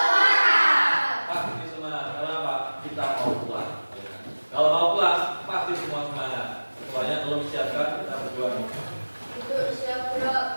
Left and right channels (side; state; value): both; inverted; correlation -1.00